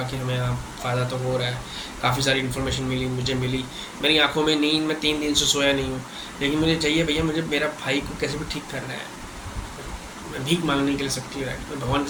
कि हमें यहाँ फ़ायदा तो हो रहा है, काफ़ी सारी इन्फॉर्मेशन मिली, मुझे मिली। मेरी आंखों में नींद, मैं 3 दिन से सोया नहीं हूँ, लेकिन मुझे चाहिए भैया, मुझे मेरा भाई को कैसे भी ठीक करना है। मैं भीख मांगने के लिए सबकी राइट, मैं भगवान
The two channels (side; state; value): both; identical; correlation 1.00